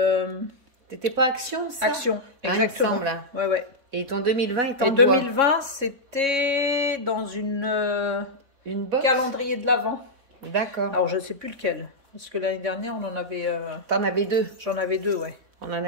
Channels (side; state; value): left; late; 3.6 ms